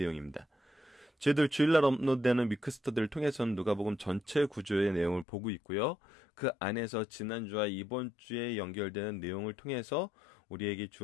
저희들 주일날 업로드되는 위크스터들을 통해서는 누가복음 전체 구조의 내용을 보고 있고요. 그 안에서 지난주와 이번 주에 연결되는 내용을 통해서 우리에게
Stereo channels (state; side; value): drops out; right; at 5.2 s